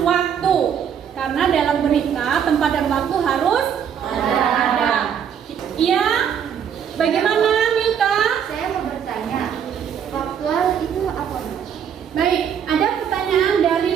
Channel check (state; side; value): quieter; left; 8.2 dB